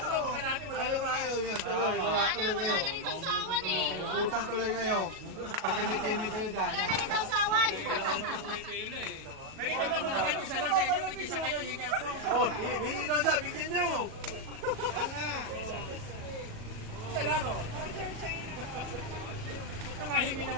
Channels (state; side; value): late; left; 37 ms